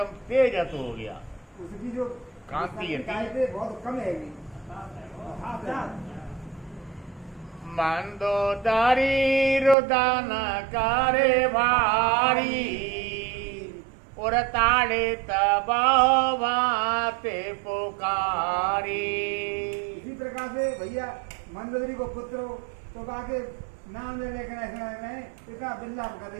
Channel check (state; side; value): drops out; left; at 9.8 s